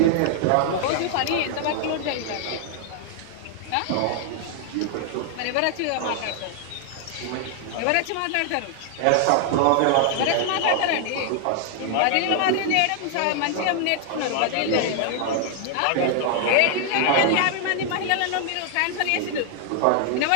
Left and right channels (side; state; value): both; different; correlation 0.00